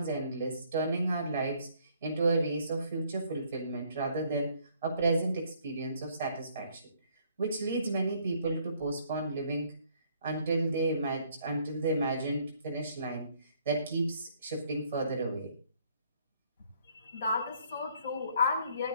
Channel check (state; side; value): inverted; both; correlation -0.65